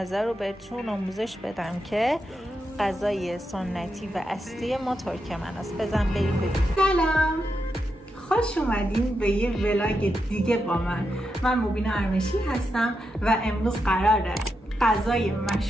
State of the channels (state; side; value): normal; both; correlation 0.85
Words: رو بهتون آموزش بدم که غذای سنتی و اصلی ما ترکمن است. بزن بریم ببینیم. سلام، خوش اومدین به یه ولاگ دیگه با من مبینا ارمشی هستم و امروز قراره غذای